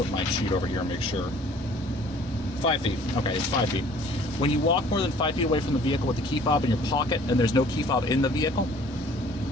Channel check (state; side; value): normal; both; correlation 0.53